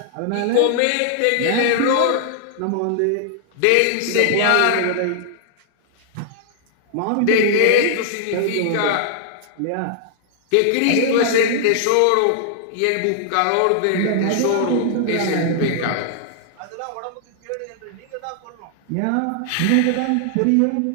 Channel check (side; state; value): both; different; correlation 0.00